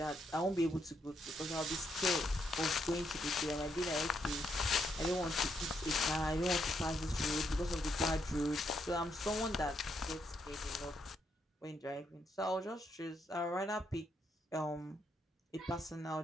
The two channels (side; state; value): both; normal; correlation 0.77